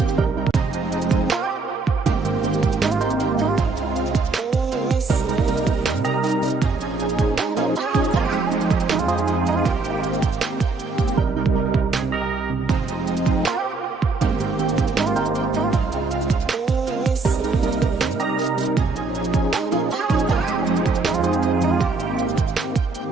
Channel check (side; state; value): left; quieter; 3.6 dB